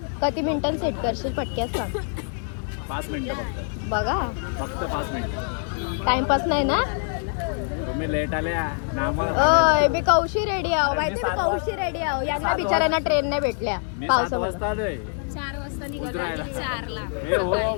किती मिनिटांनी सेट करशील पटक्यास सांग. 5 मिनिटं फक्त. बघा फक्त 5 मिनिटं. टाइमपास नाही ना. तुम्ही लेट आल्या ना आम्हाला. ओय मी कौशी रेडी आहो. माहिती मी कौशी रेडी आहो. यांना बिचारांना ट्रेन नाही भेटल्या मी 7 वाजता आलोय. 4 वाजता निघालो. उतरायला. 4ला. हे हो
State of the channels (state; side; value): silent; right; 57 dB below the other